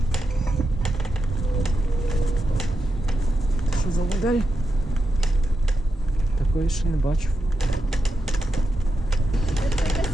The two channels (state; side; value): normal; both; correlation 0.87